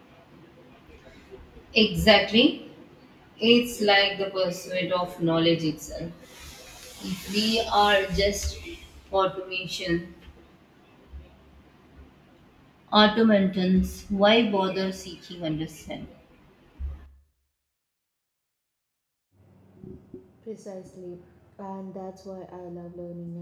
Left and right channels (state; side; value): identical; both; correlation 1.00